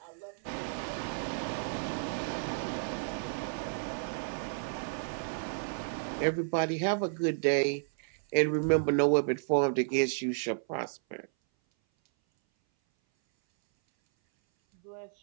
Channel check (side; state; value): left; silent; 56 dB below the other